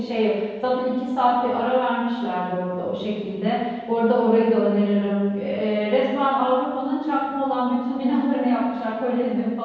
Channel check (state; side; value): identical; both; correlation 1.00